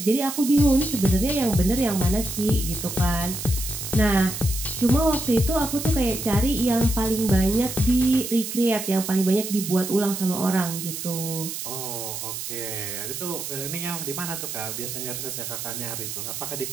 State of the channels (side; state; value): right; noise; hiss, 6 dB below the sound